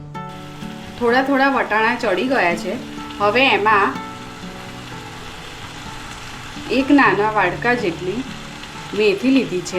થોડા થોડા વટાણા ચડી ગયા છે। હવે એમાં 1 નાના વાડકા જેટલી મેથી લીધી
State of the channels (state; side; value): identical; both; correlation 1.00